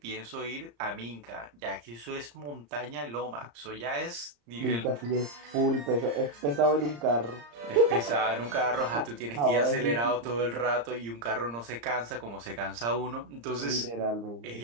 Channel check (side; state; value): left; late; 34 ms